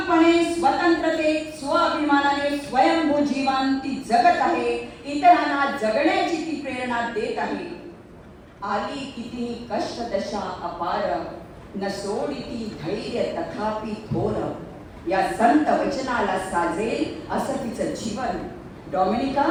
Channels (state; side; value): identical; both; correlation 1.00